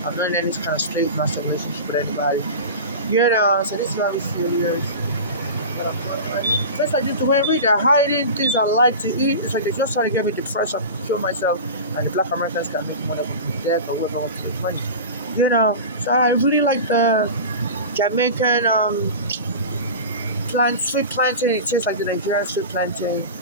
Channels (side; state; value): both; inverted; correlation -0.30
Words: I'm not in any kind of slave master relationship with anybody. So this is very serious. Just like this, the way I read, they're hiding things I like to eat. It's like they just try to get me depressed and kill myself, and the black Americans can make money with death or whatever wants to make money. So I really like the Jamaican sweet plantain. It tastes like the Nigerian sweet plantain.